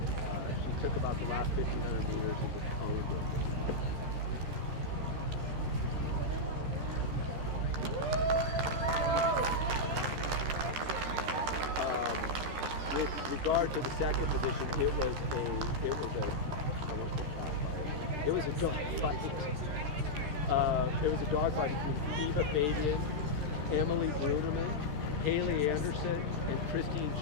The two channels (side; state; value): left; late; 13 ms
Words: She took about the last 1,500 meters and just owned it. With regard to the second position, it was a dogfight. It was a dogfight between Eva Fabian, Emily Bruneman, Haley Anderson, and Christine